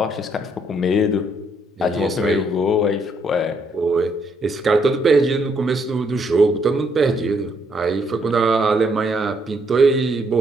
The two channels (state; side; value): normal; both; correlation 0.72